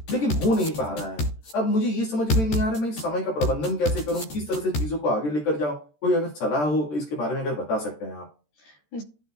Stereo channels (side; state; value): right; late; 13 ms